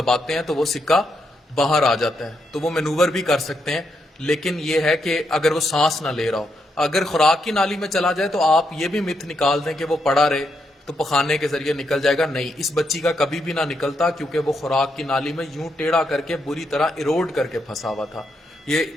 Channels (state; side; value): normal; both; correlation 0.80